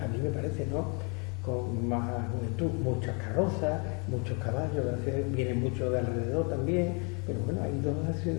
mí me parece, ¿no? Con más juventud, muchas carrozas, muchos caballos, vienen muchos de alrededor también, pero bueno, hay dos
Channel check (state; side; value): quieter; right; 32.1 dB